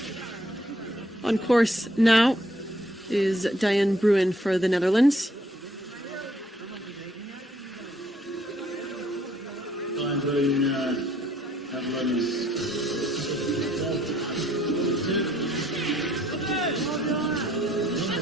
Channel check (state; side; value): normal; both; correlation 0.65